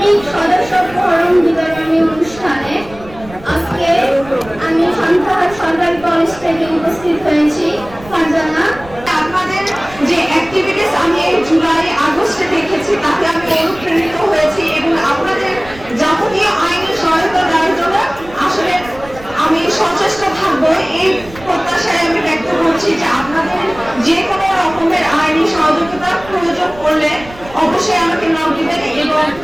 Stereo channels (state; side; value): noise; right; rumble, 19 dB below the sound